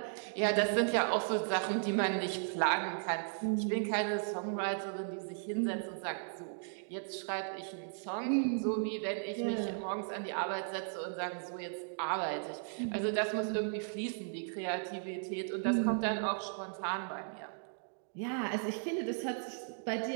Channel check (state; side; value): silent; left; digital silence